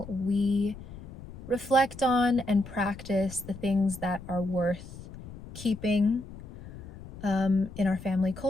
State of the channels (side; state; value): left; noise; rumble, 15 dB below the sound